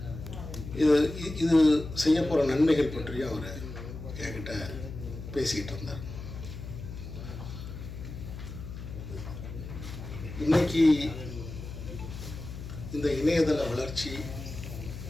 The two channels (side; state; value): left; noise; hum, 10 dB below the sound